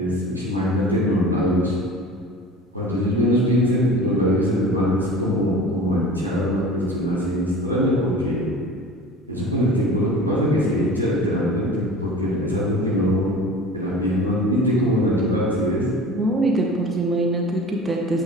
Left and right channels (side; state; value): both; normal; correlation 0.39